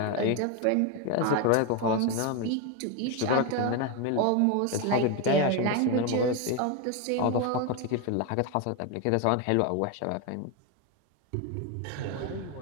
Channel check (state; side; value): different; both; correlation 0.02